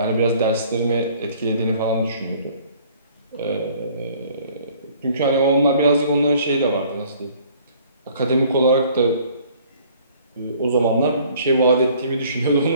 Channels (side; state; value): both; inverted; correlation -0.56